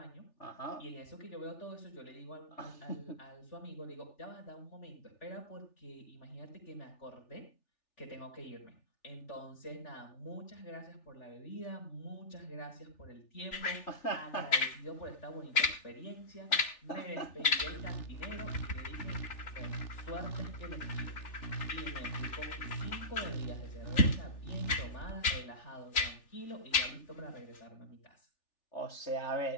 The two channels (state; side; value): late; right; 3.4 ms